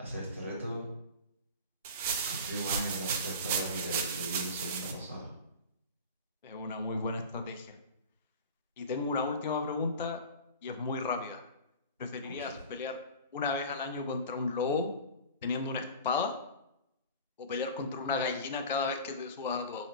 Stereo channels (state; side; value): inverted; both; correlation -0.34